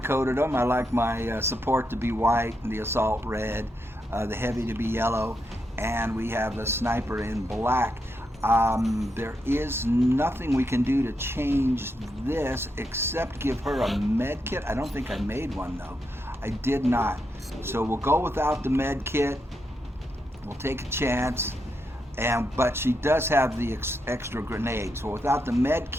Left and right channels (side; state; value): both; normal; correlation 0.83